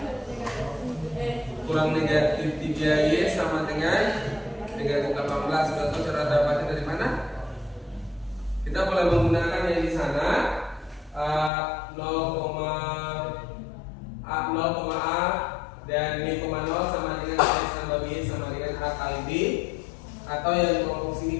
kurang negatif 3y sama dengan negatif 18. Sudah tahu cara dapatnya dari mana? Kita boleh menggunakan yang di sana 0,a dan b, 0 sama dengan x tambah b sama dengan a kali b, atau yang kelompok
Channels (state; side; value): drops out; right; at 11.5 s